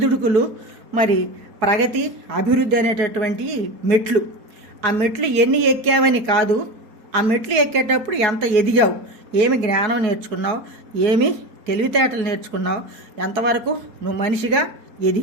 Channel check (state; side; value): late; left; 4.7 ms